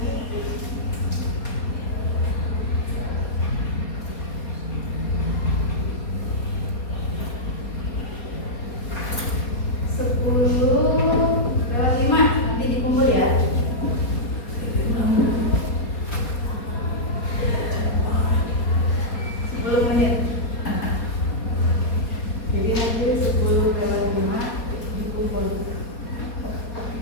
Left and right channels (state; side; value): late; right; 4.2 ms